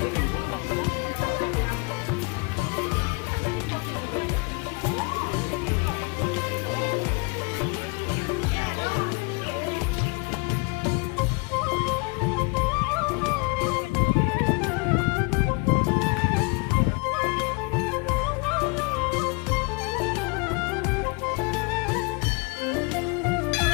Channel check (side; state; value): right; quieter; 29.8 dB